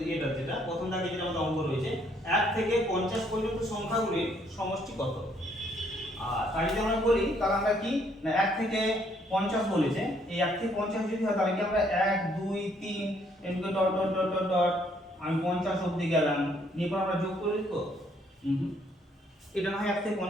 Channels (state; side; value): normal; both; correlation 0.67